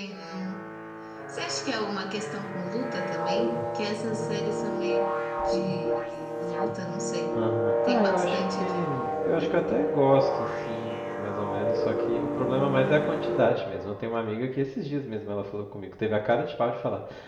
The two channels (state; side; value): identical; both; correlation 1.00